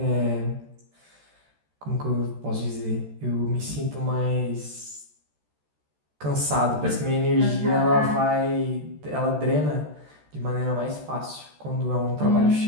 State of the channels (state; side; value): late; left; 14 ms